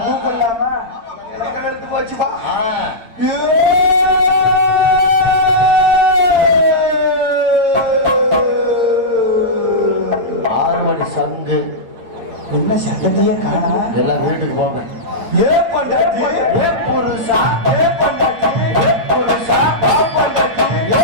கூப்பிடலாமா எனக்கு எடுத்து போச்சுப்பா ஆறு மணி சங்கு என்ன சட்டத்தையே காணா எல்லாம் வீட்டுக்கு போங்க. ஏ பண்டாட்டி ஏ புருஷா, ஏ பண்டாட்டி ஏ புருஷா, வா பண்டாட்டி ஏ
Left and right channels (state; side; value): late; left; 8.8 ms